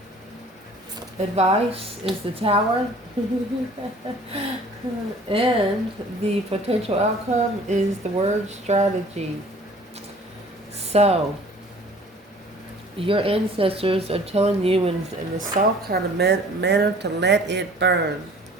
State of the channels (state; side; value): normal; both; correlation 0.51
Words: Advice is the tower. And the potential outcome is the word strategy. So, your ancestors are telling you in a soft kind of manner to let it burn.